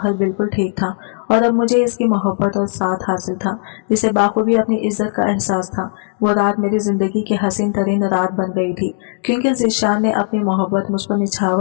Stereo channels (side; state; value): right; silent; digital silence